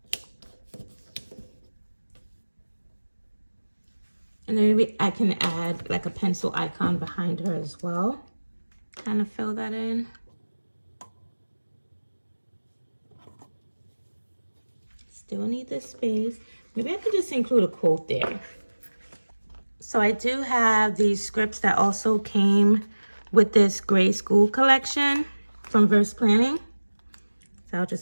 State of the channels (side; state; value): both; inverted; correlation -1.00